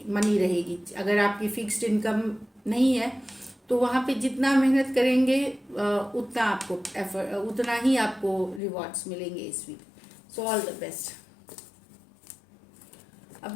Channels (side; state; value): right; drops out; at 8.6 s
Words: रहेगी। अगर आपकी फिक्स्ड इनकम नहीं है तो वहाँ पे जितना मेहनत करेंगे उतना ही आपको रिवॉर्ड्स मिलेंगे इस week. So all the best.